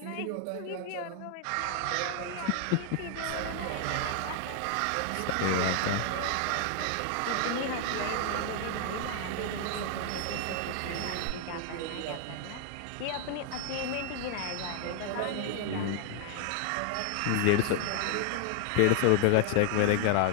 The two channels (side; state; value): both; different; correlation 0.00